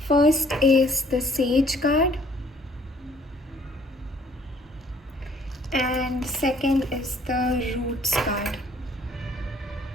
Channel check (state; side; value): normal; both; correlation 0.60